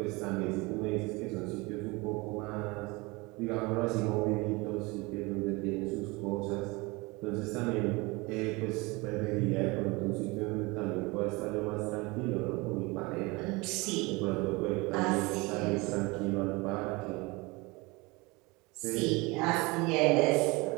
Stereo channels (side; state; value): left; quieter; 24.9 dB